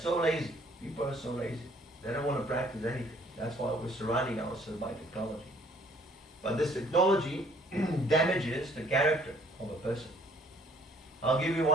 lazy. People are so lazy. They don't want to practice anything. That's why we're surrounding ourselves by technology. But this technology damages the character of a person. I'll give you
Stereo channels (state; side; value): normal; both; correlation 0.59